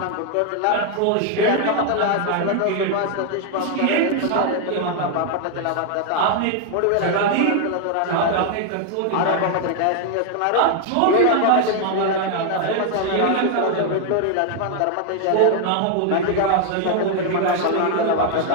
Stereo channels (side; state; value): both; different; correlation 0.00